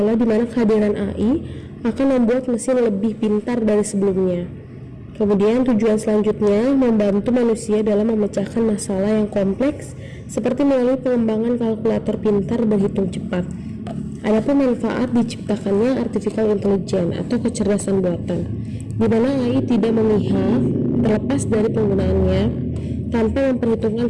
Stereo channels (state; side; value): identical; both; correlation 1.00